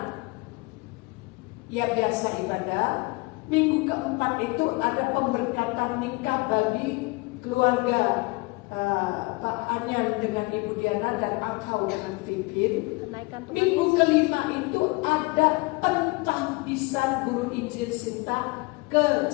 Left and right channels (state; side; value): quieter; right; 25.6 dB